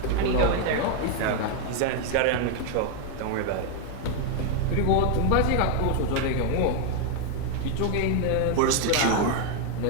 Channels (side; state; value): both; different; correlation 0.01